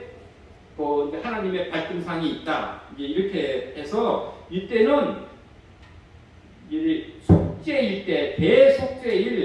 이제 하나님의 발등상이 있다. 이제 이렇게 해서 이때는 이제 속죄일 때,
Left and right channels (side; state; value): both; identical; correlation 1.00